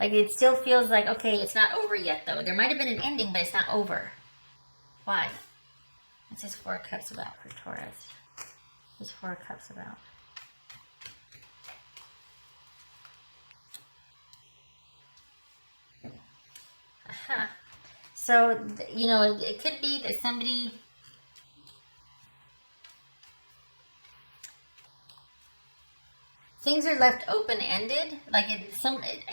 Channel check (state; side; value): inverted; both; correlation -1.00